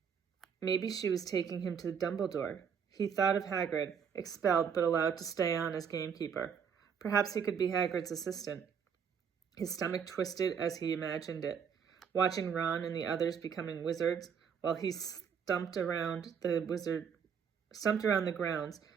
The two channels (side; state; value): left; quieter; 7.1 dB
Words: Maybe she was taking him to Dumbledore. He thought of Hagrid, expelled but allowed to stay on as gamekeeper. Perhaps he could be Hagrid's assistant. His stomach twisted as he imagined it, watching Ron and the others becoming wizards while he stumped around the grounds